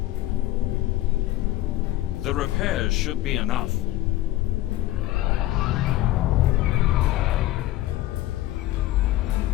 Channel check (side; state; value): right; quieter; 15.6 dB